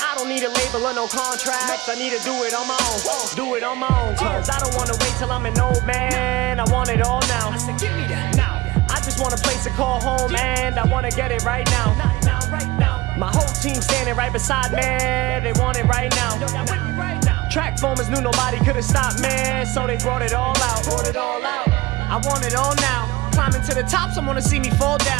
don't need a label or no contracts. I need to do it on my own. Do it on my own. Cause I don't want to wait till I'm an old man. I want it all now. I said, give me that now. I just want a place to call home, and I want to get it right now. Now, right now. My whole team standing right beside me. They want it right now. Yo, y'all with me right now. Track formers knew nobody could have stopped me, so they brought it all out. I want it all now. Climbing to the top, someone to see me fall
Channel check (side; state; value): left; quieter; 19.8 dB